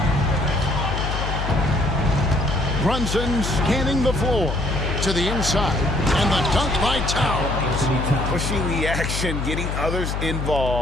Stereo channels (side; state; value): left; noise; hum, 2 dB below the sound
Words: Brunson scanning the floor to the inside, and the dunk by Towns. Pushing the action, getting others